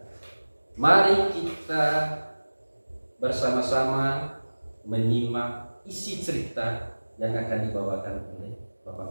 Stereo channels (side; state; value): both; inverted; correlation -1.00